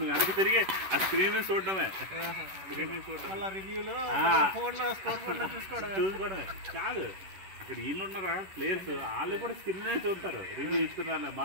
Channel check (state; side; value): late; left; 11 ms